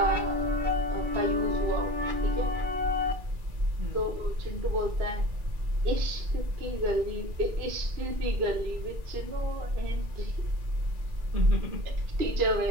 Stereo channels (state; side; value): late; left; 2.4 ms